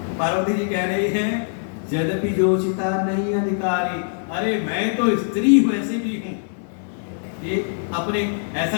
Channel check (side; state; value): right; silent; digital silence